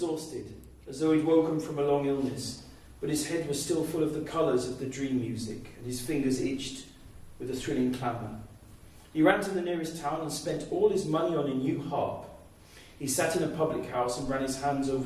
as though he'd woken from a long illness, but his head was still full of the colours of the dream music, and his fingers itched with a thrilling clamour. He ran to the nearest town and spent all his money on a new harp. He sat in a public house and ran his hands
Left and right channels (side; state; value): both; identical; correlation 1.00